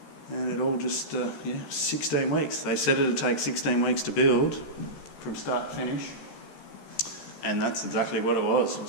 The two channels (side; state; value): right; late; 14 ms